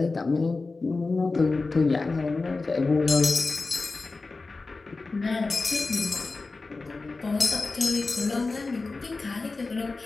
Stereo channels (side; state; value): right; quieter; 3.7 dB